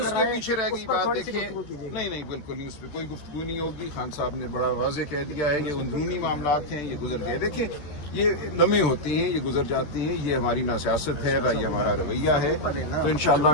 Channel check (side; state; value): right; late; 14 ms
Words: کے پیچھے رہ گئی بات. دیکھیے نہیں بالکل نہیں، اس پہ کوئی گفتگو نہیں ہوگی. خان صاحب نے بڑا واضح کہہ دیا ہے کہ اندرونی معاملات ہیں، یہ گزر گئے. دیکھیں یہ لمحے ہوتے ہیں، یہ گزر جاتی ہیں. یہ ہماری نہ سیاست ہے نہ یہ ہمارا رویہ ہے. تو انشاءاللہ